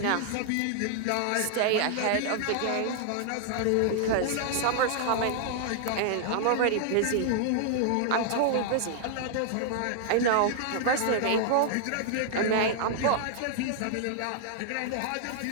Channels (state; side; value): different; both; correlation -0.01